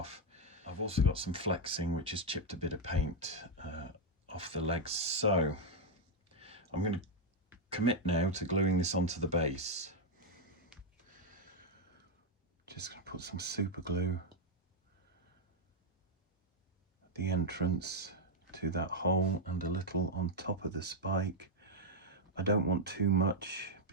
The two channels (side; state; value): both; normal; correlation 0.00